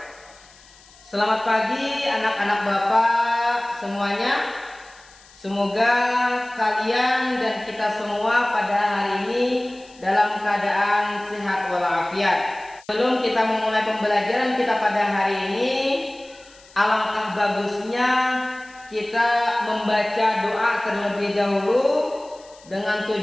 Selamat pagi anak-anak bapak semuanya. Semoga kalian dan kita semua pada hari ini dalam keadaan sehat walafiat. Sebelum kita memulai pembelajaran kita pada hari ini, alangkah bagusnya kita membaca doa terlebih dahulu dengan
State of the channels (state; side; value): noise; left; hiss, 25 dB below the sound